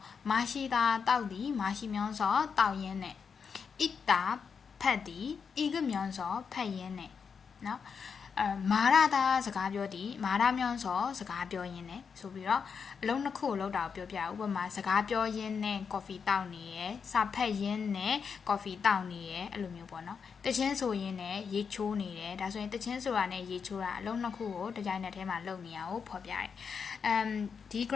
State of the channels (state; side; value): quieter; right; 6.1 dB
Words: မရှိတာတောက်သည်မရှိမြောင်းစောတောက်ရင်းနဲ့ဣတာဖတ်သည်ဤကမြောင်းစောဖတ်ရင်းနဲ့နော်မာရတာစကားပြောသည်မာရမြောင်းစောစကားပြောရင်းနဲ့ဆိုပြီးတော့အလုံးနှစ်ခုကိုလောက်တာကိုပြောပြဥပမာစကားပြောရင်းနဲ့ coffee တောက်နေရယ်စာဖတ်ရင်းနဲ့ coffee တောက်နေရယ်အဲ့လိုမျိုးပေါ့နော်တချင်းဆိုရင်းနဲ့ရေချိုးနေတယ်ဒါဆိုရင်တချင်းဆိုတာနဲ့ရေချိုးတာအလုံးနှစ်ခုကိုတစ်ကြိုင်နက်တည်းမှာလုပ်နေရအောင်ဖော်ပြတယ်ဒီ